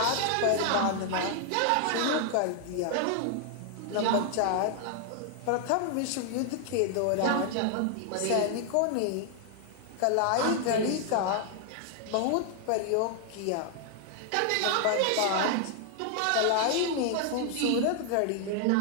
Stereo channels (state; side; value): different; both; correlation 0.00